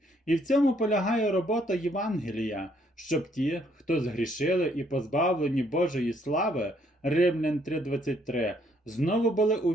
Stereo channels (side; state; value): both; normal; correlation 0.68